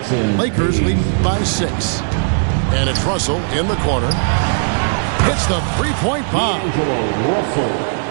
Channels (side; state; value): left; silent; digital silence